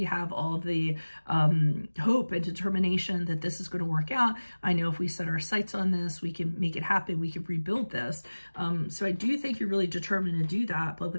have all the hope and determination that this is going to work out. I know if we set our sights on this, we can make it happen. We can rebuild this. So I do think you're really determined to do that. But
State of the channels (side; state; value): both; inverted; correlation -1.00